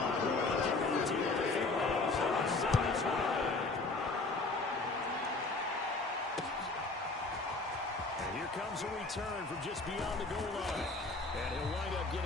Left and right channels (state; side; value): quieter; right; 3.4 dB